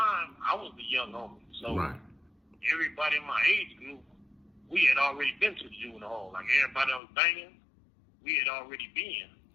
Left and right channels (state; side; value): drops out; right; at 7.0 s